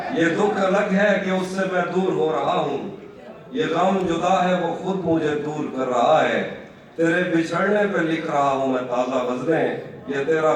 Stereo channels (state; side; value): identical; both; correlation 1.00